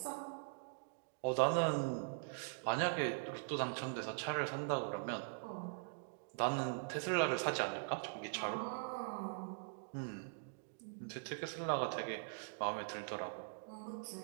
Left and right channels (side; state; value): left; silent; digital silence